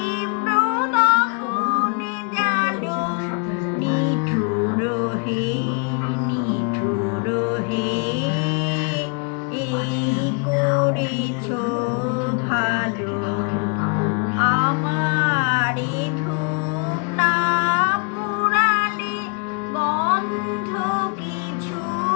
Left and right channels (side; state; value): right; quieter; 36.0 dB